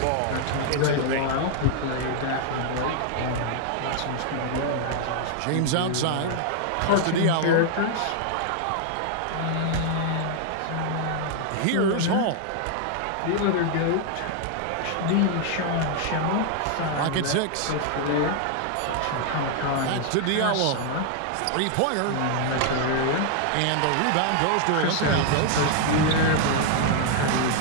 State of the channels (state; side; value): different; both; correlation 0.00